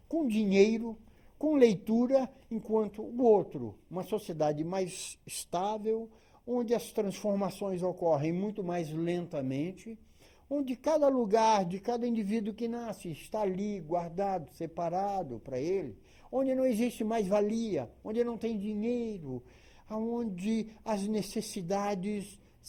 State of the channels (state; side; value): identical; both; correlation 1.00